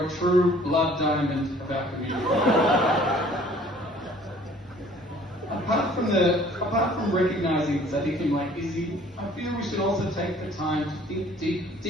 a true blood diamond of our community. Apart from recognising Sadiqim like Izzy, I feel we should also take the time to think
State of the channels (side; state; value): both; normal; correlation 0.54